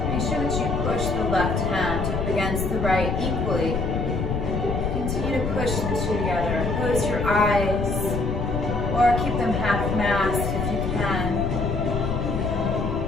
Make sure that you push the left hand up against the right equally. Continue to push the two together. Close your eyes or keep them half masked if you can.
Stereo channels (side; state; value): left; noise; rumble, 1 dB below the sound